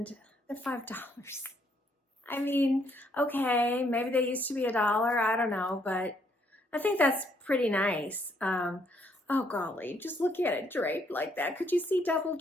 they're $5. I mean, okay, maybe they used to be $1, I don't know, but I think that's pretty nice. Oh golly, just look at it draped like that. Could you see double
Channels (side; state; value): both; normal; correlation 0.70